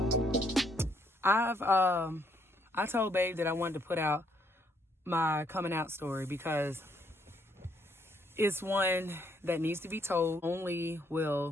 I told Babe that I wanted to put out my coming out story because it's one that needs to be told. Only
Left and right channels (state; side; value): normal; both; correlation 0.70